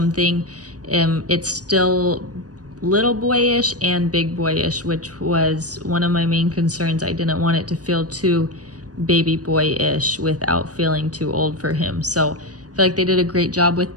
It's still little boyish and big boyish, which was one of my main concerns. I didn't want it to feel too baby boyish without feeling too old for him. So I feel like they did a great job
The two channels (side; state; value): left; late; 0.68 ms